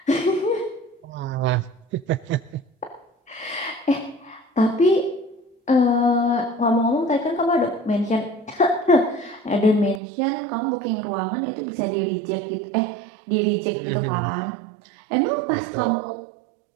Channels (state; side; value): drops out; left; at 10.0 s